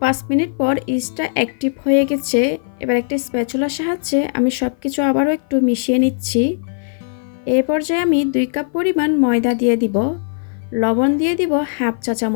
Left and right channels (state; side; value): silent; right; 56 dB below the other